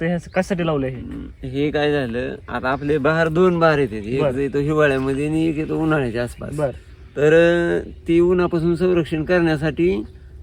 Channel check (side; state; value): both; identical; correlation 1.00